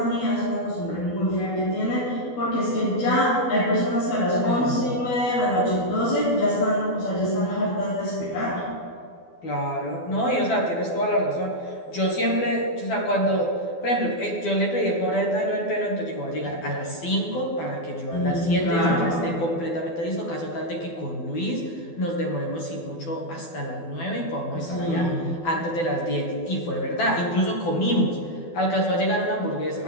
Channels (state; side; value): late; right; 12 ms